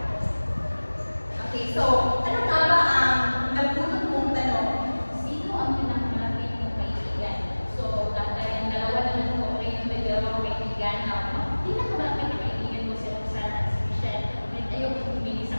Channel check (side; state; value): both; inverted; correlation -1.00